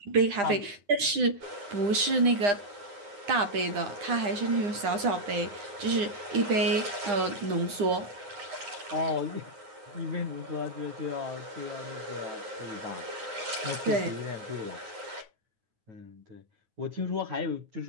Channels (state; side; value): late; left; 9.9 ms